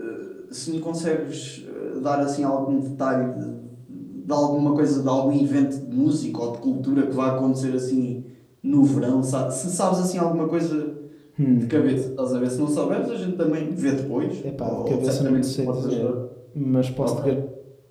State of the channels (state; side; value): identical; both; correlation 1.00